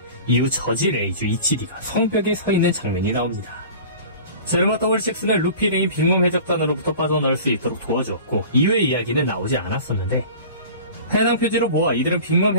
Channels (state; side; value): inverted; both; correlation -0.40